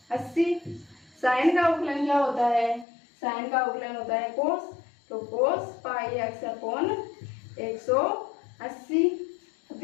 साइन का अवकलन क्या होता है, साइन का अवकलन होता है कोस, तो कोस पाई एक्स अपॉन 180, तो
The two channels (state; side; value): drops out; right; at 2.9 s